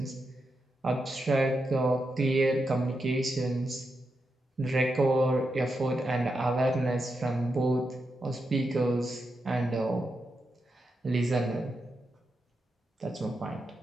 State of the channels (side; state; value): both; normal; correlation 0.86